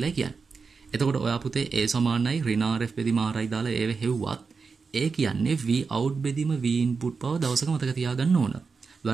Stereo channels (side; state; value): left; quieter; 4.9 dB